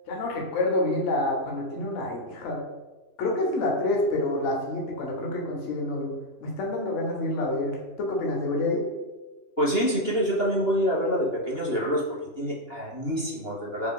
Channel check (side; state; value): right; late; 2.9 ms